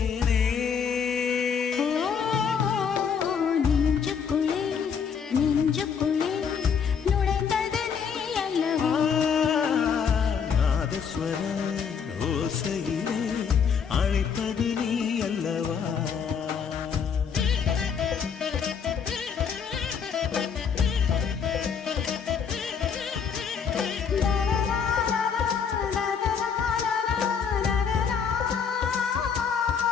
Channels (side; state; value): right; quieter; 6.7 dB